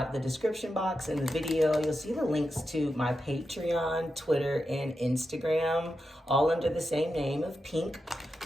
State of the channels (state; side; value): normal; both; correlation 0.88